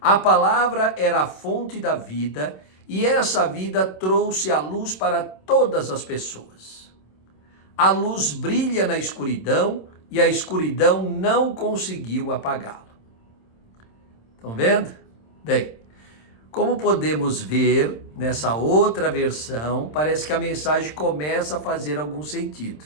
A palavra era a fonte da vida e essa vida trouxe a luz para todas as pessoas. A luz brilha na escuridão e a escuridão não conseguiu apagá-la. Estão vendo? Bem, como podemos ver nessa outra versão, parece que a mensagem começa a fazer algum sentido.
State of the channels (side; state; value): right; late; 26 ms